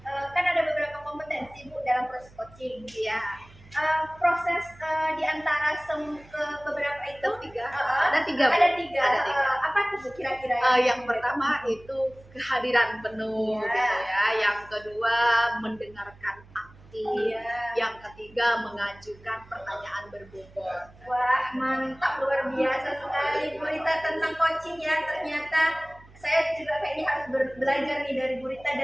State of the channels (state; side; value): noise; right; hum, 24 dB below the sound